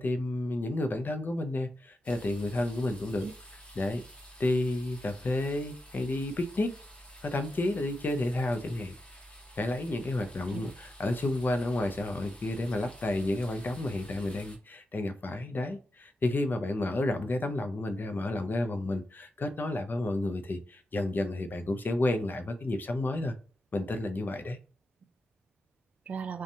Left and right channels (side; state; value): both; normal; correlation 0.88